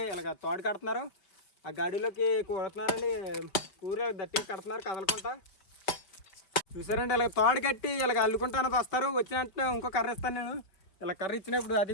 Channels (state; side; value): late; right; 5.2 ms